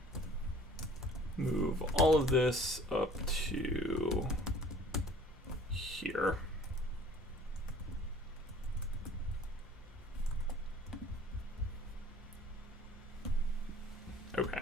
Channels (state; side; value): normal; both; correlation 0.50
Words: move all of this up to here. Okay,